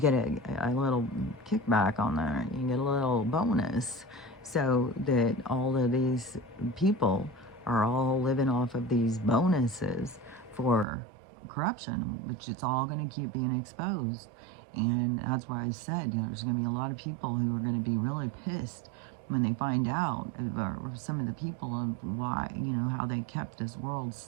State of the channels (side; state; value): left; drops out; at 10.9 s